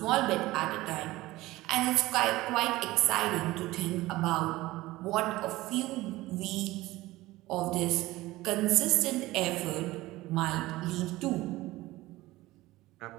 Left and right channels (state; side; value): quieter; left; 18.3 dB